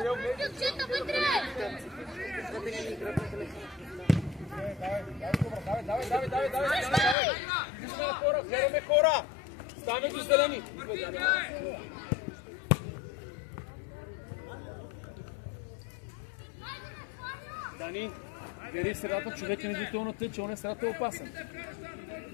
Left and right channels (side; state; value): right; drops out; at 7.2 s